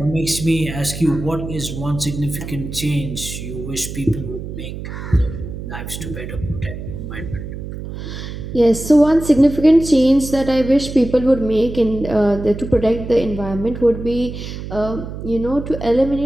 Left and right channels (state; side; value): noise; right; hum, 9 dB below the sound